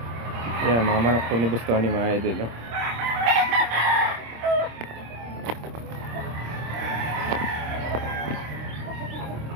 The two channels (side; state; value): left; late; 26 ms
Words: Yan, mga manok po ni Boss Tony mga idol. No?